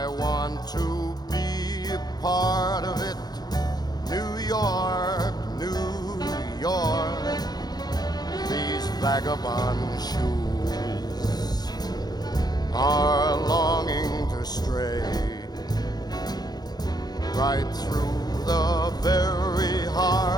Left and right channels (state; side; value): late; right; 0.19 ms